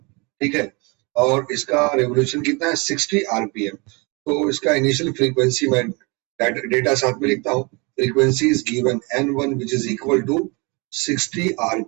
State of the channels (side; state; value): left; quieter; 28.9 dB